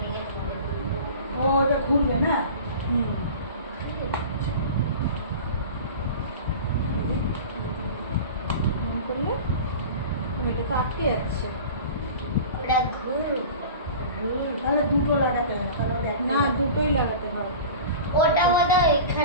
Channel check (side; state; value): both; inverted; correlation -0.36